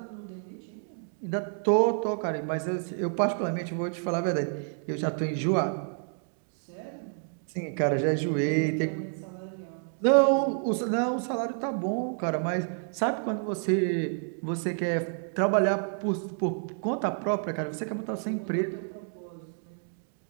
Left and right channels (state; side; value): silent; left; 58 dB below the other